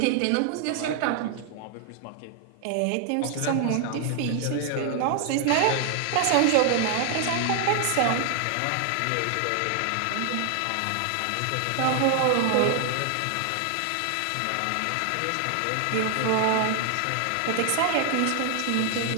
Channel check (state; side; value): different; both; correlation 0.00